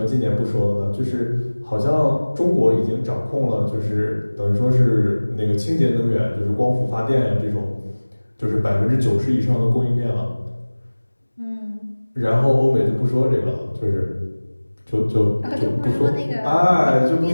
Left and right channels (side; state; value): both; inverted; correlation -1.00